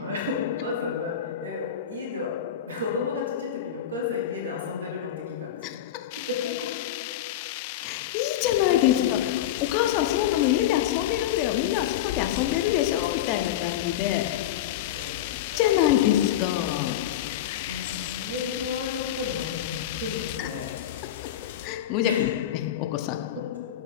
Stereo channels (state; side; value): quieter; right; 11.1 dB